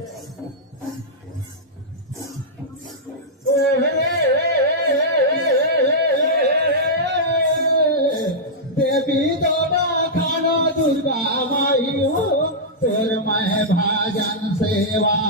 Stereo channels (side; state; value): both; normal; correlation -0.09